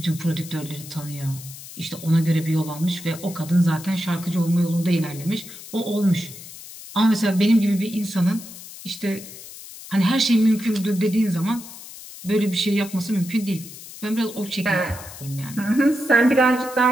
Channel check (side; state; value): left; noise; hiss, 15 dB below the sound